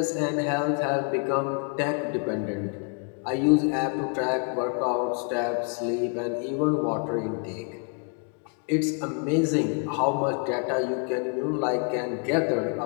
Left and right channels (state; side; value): quieter; right; 39.4 dB